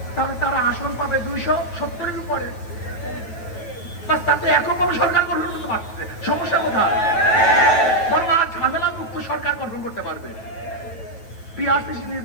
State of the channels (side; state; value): right; late; 9.2 ms